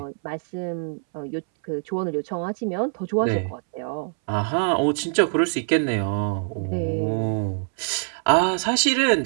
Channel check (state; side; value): silent; left; 62 dB below the other